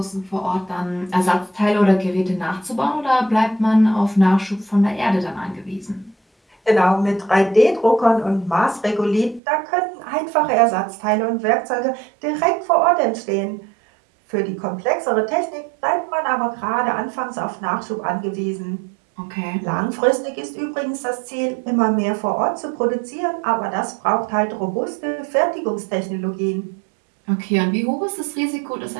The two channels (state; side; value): drops out; left; at 9.4 s